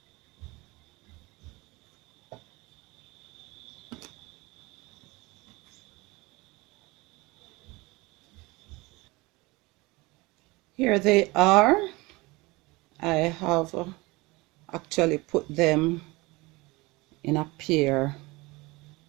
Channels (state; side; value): quieter; left; 23.2 dB